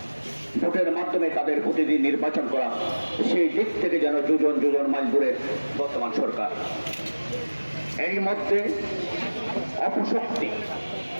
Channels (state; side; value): inverted; both; correlation -1.00